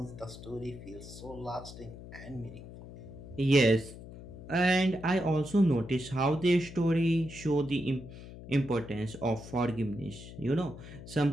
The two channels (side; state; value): left; noise; hum, 14 dB below the sound